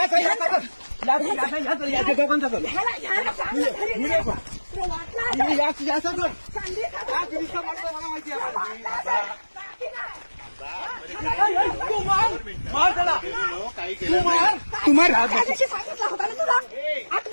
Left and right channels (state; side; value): inverted; both; correlation -1.00